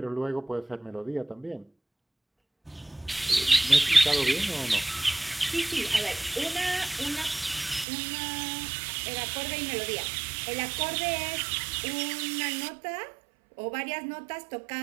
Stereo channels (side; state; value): left; drops out; at 7.9 s